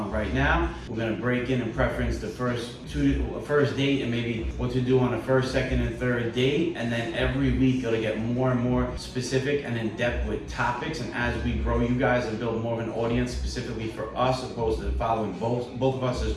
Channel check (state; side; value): identical; both; correlation 1.00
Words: right now. We're going to break in and preference the first date and maybe what to do on a first, second, and third date. And then every week it'll get more and more specific and in depth with topics. And as we grow you guys and build more of an audience specifically for us, opposed to following both of us as